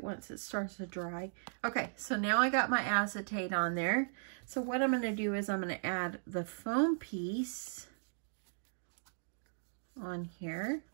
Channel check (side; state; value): left; silent; digital silence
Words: once it starts to dry. Okay, so now I got my acetate on there. So what I'm going to do is I'm going to add the foam piece on here.